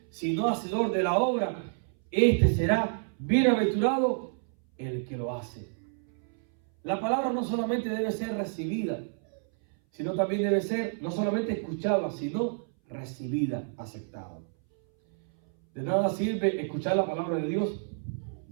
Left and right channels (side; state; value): left; silent; 58 dB below the other